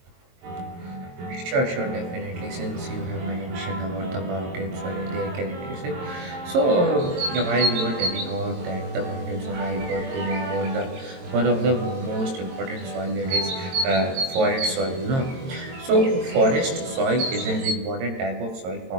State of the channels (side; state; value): left; late; 22 ms